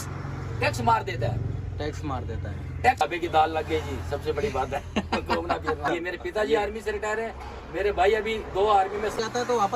टैक्स मार देता है, टैक्स मार देता है। टैक्स अबे की दाल लग गई जी, सबसे बड़ी बात है। घूमना फिरना। ये मेरे पिताजी आर्मी से रिटायर है, मेरे भाई अभी 2 आर्मी में जाता है तो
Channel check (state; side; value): identical; both; correlation 1.00